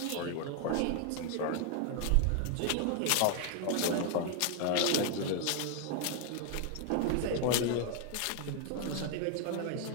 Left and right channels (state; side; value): different; both; correlation 0.00